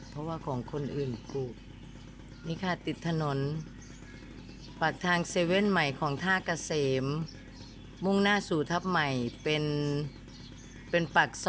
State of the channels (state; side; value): identical; both; correlation 1.00